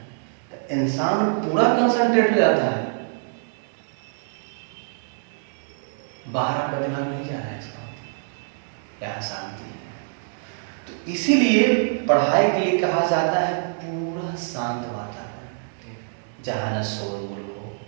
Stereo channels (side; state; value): left; silent; digital silence